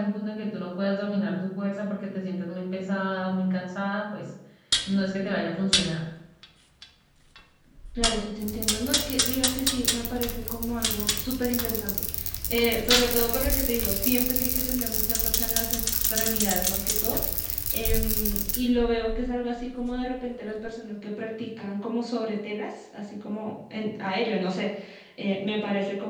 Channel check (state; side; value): identical; both; correlation 1.00